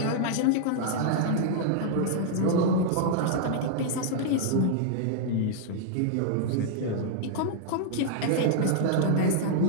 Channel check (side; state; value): both; different; correlation -0.01